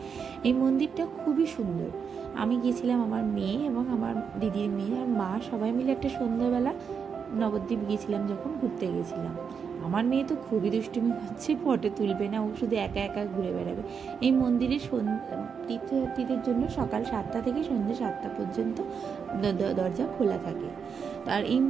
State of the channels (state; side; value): quieter; left; 6.4 dB